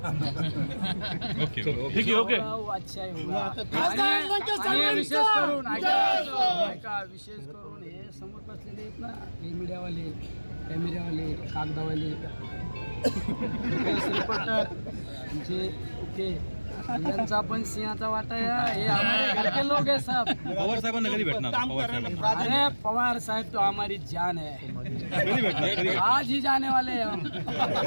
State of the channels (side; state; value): both; inverted; correlation -1.00